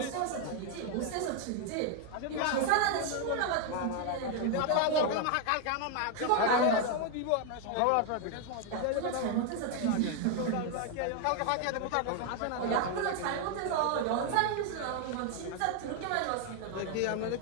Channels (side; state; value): both; different; correlation 0.01